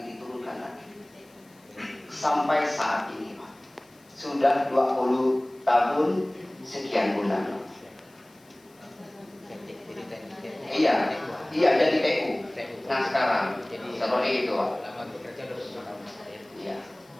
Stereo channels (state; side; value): noise; left; hiss, 30 dB below the sound